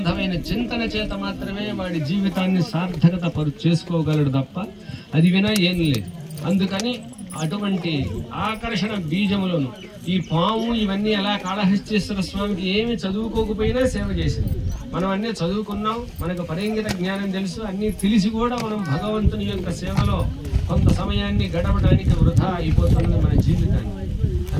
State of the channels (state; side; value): identical; both; correlation 1.00